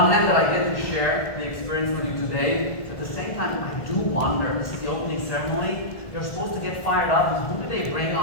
hand, that I get to share the experience with you today. At the same time, I do wonder, this is the opening ceremony, you're supposed to get fired up, and who do they bring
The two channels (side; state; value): right; late; 1.7 ms